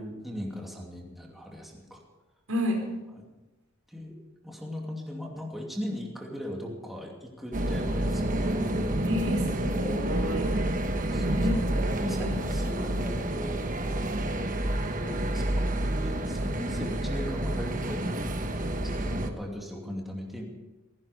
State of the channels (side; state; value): both; normal; correlation 0.73